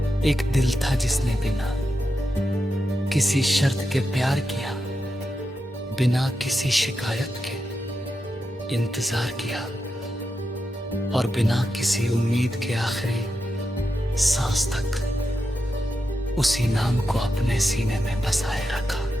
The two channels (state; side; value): normal; both; correlation 0.87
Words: एक दिल था जिसने बिना किसी शर्त के प्यार किया, बिना किसी शिकायत के इंतजार किया, और बिना किसी उम्मीद के आखिरी सांस तक उसी नाम को अपने सीने में बसाए रखा।